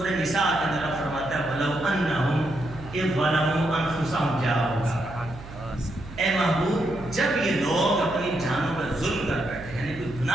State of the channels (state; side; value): noise; right; hum, 15 dB below the sound